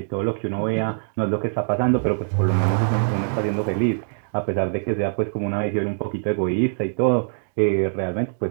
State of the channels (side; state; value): left; silent; digital silence